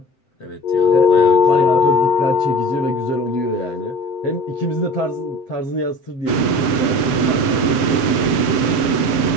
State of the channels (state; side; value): late; right; 7.8 ms